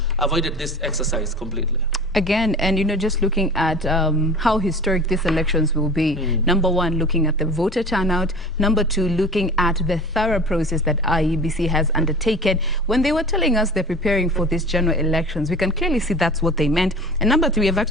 avoided this exercise completely. Again, and just looking at how historic these elections will be. Number one, looking at the voter turnout. Number two, looking at the thorough process that IEBC has undertaken. When they were telling us they're preparing for these general elections, we can clearly see that's what they meant. And number three, I've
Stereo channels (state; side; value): normal; both; correlation 0.39